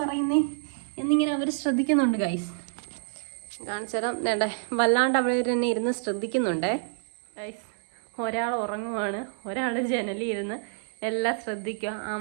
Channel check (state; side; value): silent; left; 59 dB below the other